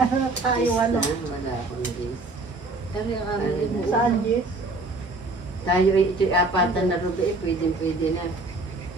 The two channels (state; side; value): quieter; left; 3.1 dB